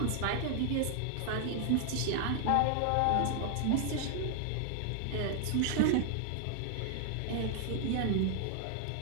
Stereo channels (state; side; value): different; both; correlation 0.00